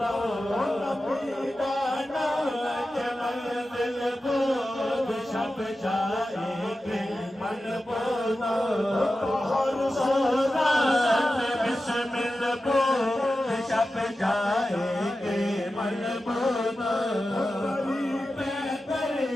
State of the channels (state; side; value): normal; both; correlation 0.93